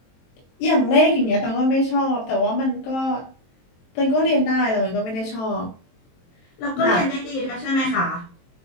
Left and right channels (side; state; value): right; late; 23 ms